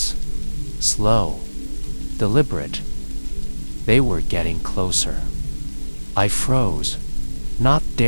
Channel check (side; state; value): both; inverted; correlation -1.00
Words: Slow, deliberate. They were getting closer. I froze, not